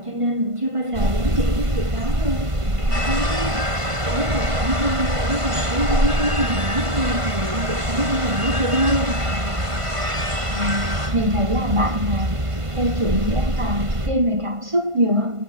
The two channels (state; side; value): late; left; 1.5 ms